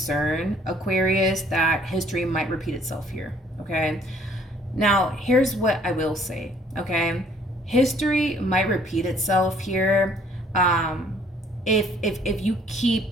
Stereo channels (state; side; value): normal; both; correlation 0.60